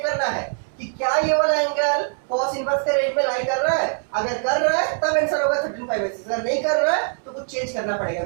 करना है कि क्या ये वाला एंगल कॉस इनवर्स के रेंज में लाई कर रहा है। अगर कर रहा है तब आंसर होगा 13 पाई बाई 6। अगर नहीं कर रहा है तो कुछ चेंज करना पड़ेगा,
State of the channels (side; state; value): left; silent; 64 dB below the other